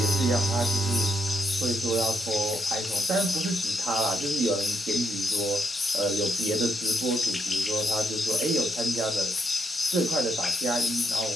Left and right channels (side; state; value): both; normal; correlation 0.79